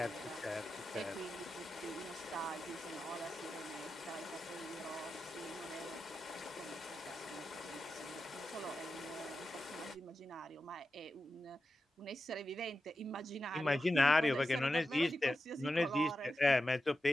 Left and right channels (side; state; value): both; normal; correlation 0.91